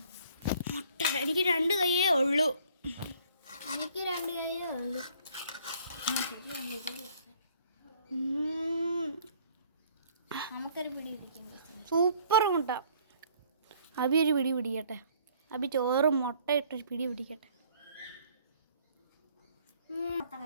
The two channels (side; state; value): both; inverted; correlation -0.59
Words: മുട്ട എനിക്ക് 2 കൈയേ ഉള്ളൂ. എനിക്ക് 2 കൈയേ ഉള്ളൂ. നമുക്കൊരു പിടി പിടിക്കും. സൂപ്പർ മുട്ട. അബി ഒരു പിടി പിടിക്കട്ടെ. അബി ചോറും മുട്ട ഇട്ടൊരു പിടി പിടിക്കട്ടെ.